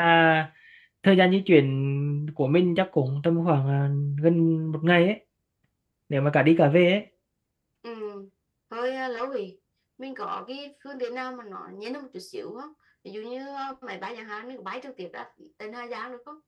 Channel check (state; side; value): identical; both; correlation 1.00